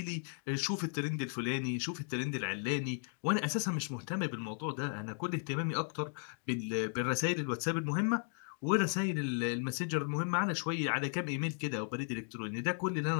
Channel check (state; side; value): silent; right; 54 dB below the other